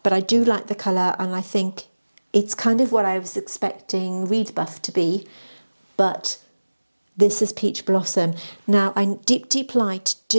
But I do like the colour, and I think it's kind of what I was expecting Reed Buff to be. But this is Peach Blossom. Now, I Deep Light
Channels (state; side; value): inverted; both; correlation -1.00